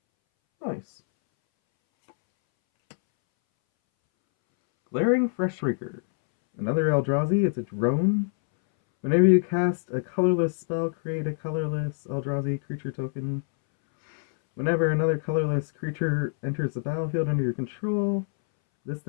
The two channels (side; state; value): right; silent; 61 dB below the other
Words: Nice. Glaring Freshraker. Another Eldrazi. It's a drone. Whenever you cast a colorless spell, create a colorless Eldrazi creature token. Whenever another colorless creature enters the battlefield under your control, this